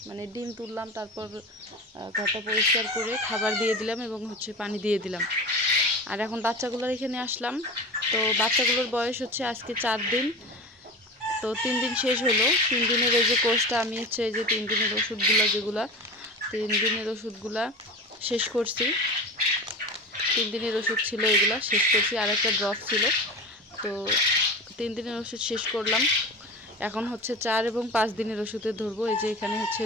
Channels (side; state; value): both; normal; correlation 0.30